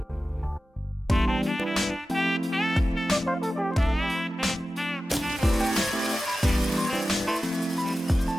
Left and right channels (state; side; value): normal; both; correlation 0.94